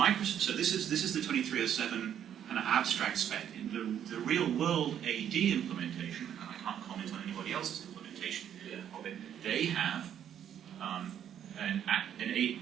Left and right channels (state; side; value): quieter; left; 9.6 dB